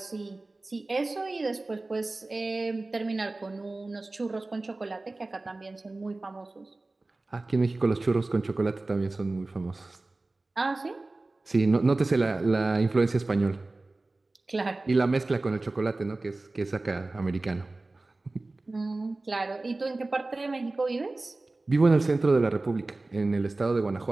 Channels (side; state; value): left; quieter; 3.1 dB